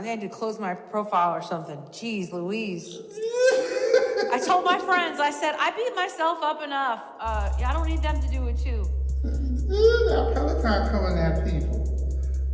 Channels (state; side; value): identical; both; correlation 1.00